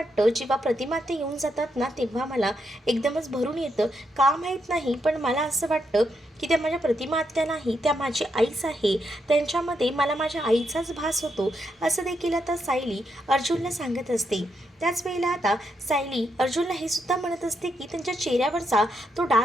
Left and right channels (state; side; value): normal; both; correlation 0.80